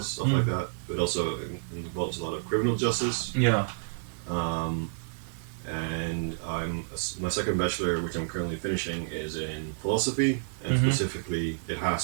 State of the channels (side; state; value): left; silent; digital silence